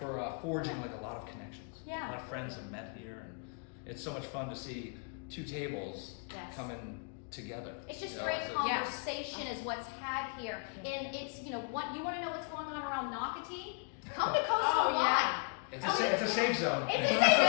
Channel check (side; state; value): right; quieter; 39.8 dB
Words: forging like a lot of connections. Yeah. A lot of friends have met here, and it's so much fun to see two tables coming together. It's just great conversation is what's had here. And it's, what you want to know what's going on around Nocatee? Come to Coastal Wine. It's a safe zone. It's a safe